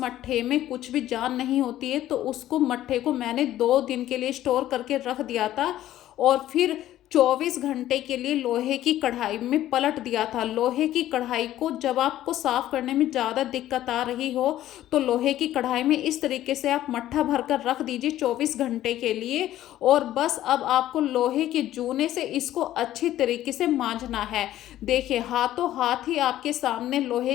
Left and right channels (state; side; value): quieter; right; 13.4 dB